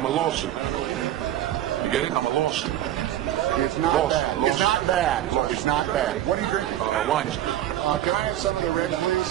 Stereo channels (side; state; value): left; quieter; 12.8 dB